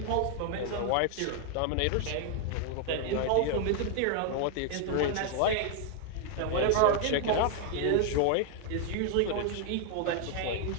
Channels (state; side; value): different; both; correlation 0.00